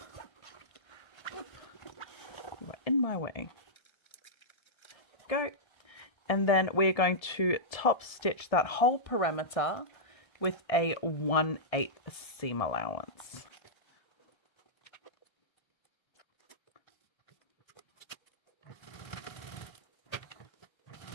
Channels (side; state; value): right; late; 1.7 ms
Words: You are in my way. Go. And then we're going to top stitch that whole perimeter with a 1/8 seam allowance.